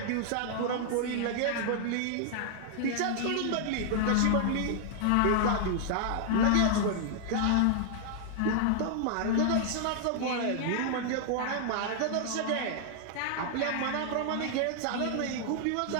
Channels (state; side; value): different; both; correlation 0.00